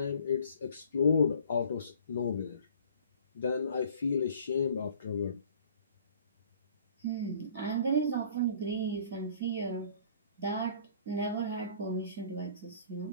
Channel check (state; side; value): inverted; both; correlation -0.52